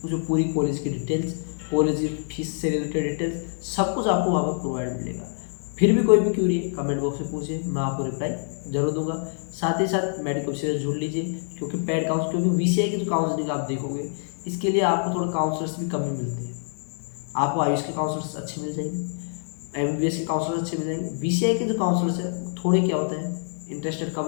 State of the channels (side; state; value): right; silent; digital silence